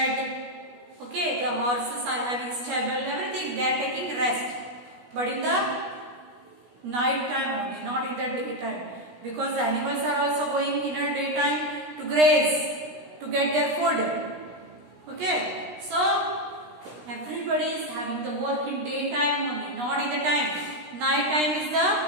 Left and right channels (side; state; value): left; late; 16 ms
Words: okay, the horses are having stable, everything they are taking rest, but in the night time only, not in the daytime, because the animals are also going in a daytime to graze, to get their food. Okay, so everybody is having the work in daytime only, not in the time. Night time is the